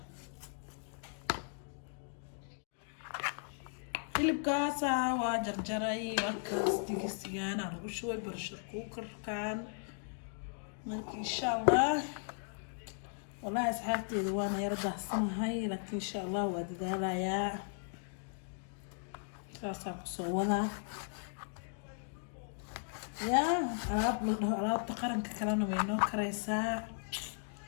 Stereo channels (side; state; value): right; silent; digital silence